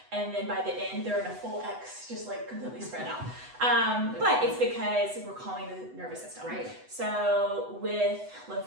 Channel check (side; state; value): left; late; 8.0 ms